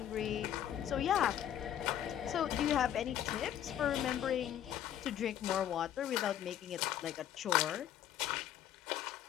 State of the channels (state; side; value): quieter; right; 10.7 dB